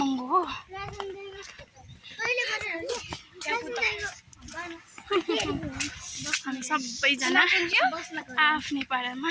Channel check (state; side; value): identical; both; correlation 1.00